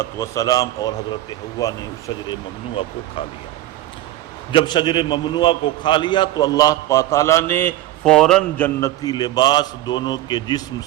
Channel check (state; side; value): quieter; left; 14.7 dB